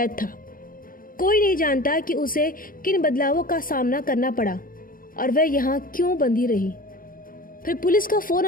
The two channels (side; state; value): right; late; 0.41 ms